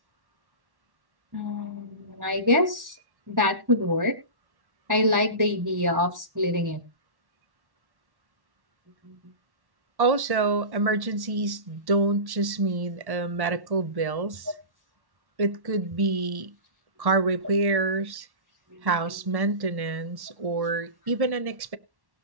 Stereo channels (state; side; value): late; left; 1.1 ms